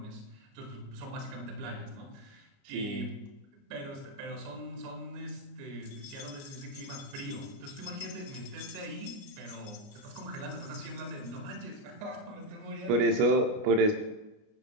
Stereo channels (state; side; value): late; left; 29 ms